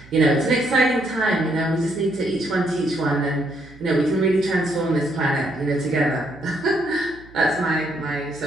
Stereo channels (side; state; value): right; noise; hum, 23 dB below the sound